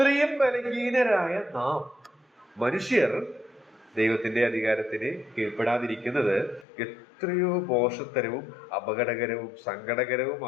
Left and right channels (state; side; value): drops out; right; at 6.7 s